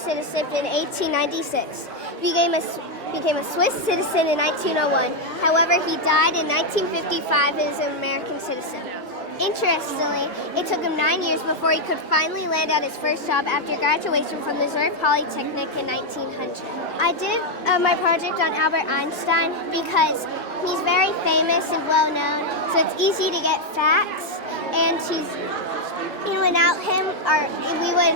in 1896. He became a Swiss citizen in 1901. However, he died in 1955 as an American citizen. Interestingly, it took him 9 years before he could finally land at his first job after graduation from the Zurich Polytechnic in 1900. I did my project on Albert Einstein because he's very famous and well known, so it's easy to get facts, and without him,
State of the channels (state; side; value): normal; both; correlation 0.01